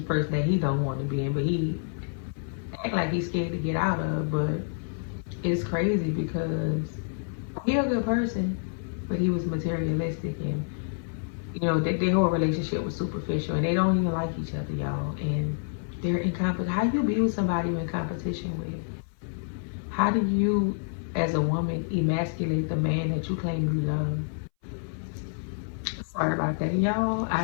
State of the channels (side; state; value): right; silent; 59 dB below the other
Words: person that he don't want to be in, but he act like he's scared to get out of. But it's crazy because he a good person, but he was materialistic, and you know their whole relationship was superficial, and they don't even like each other, y'all. And they're in competition. How you be with somebody you're in competition with? How do you, as a woman, emasculate the man that you claim you love? Sorry about that, y'all. I